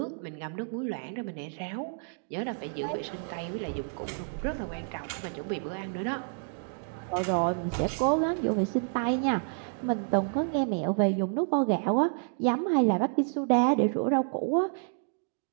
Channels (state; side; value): silent; left; 58 dB below the other